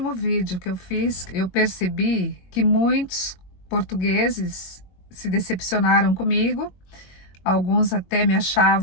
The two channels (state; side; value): late; right; 22 ms